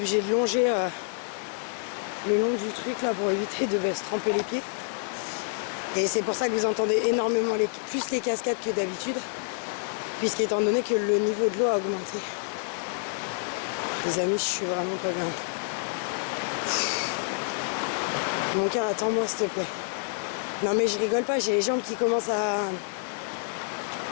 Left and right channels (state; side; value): silent; right; digital silence